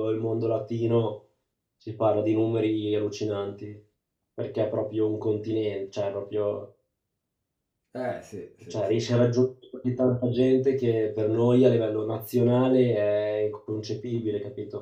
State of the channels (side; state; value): both; identical; correlation 1.00